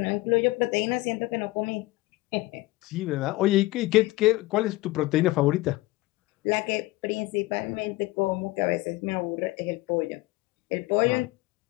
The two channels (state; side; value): quieter; right; 19.6 dB